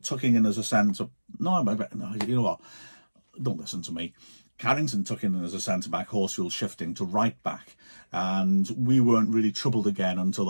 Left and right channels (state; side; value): inverted; both; correlation -1.00